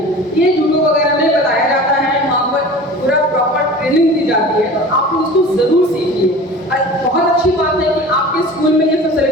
ये जूडो वगैरह में बताया जाता है, वहाँ पर पूरा प्रॉपर ट्रेनिंग दी जाती है, तो आप उसको जरूर सीखिए। बहुत अच्छी बात है कि आपके स्कूल में ये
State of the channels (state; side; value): normal; both; correlation 0.39